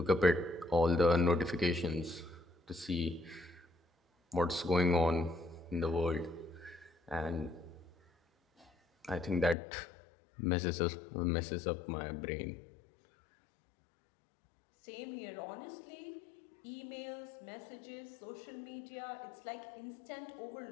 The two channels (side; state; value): right; drops out; at 9.6 s